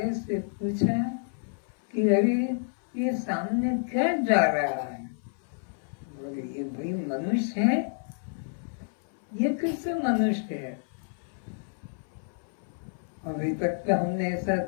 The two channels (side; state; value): right; silent; 59 dB below the other